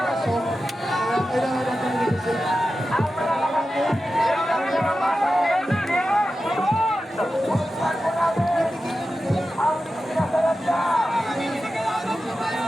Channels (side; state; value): both; normal; correlation 0.92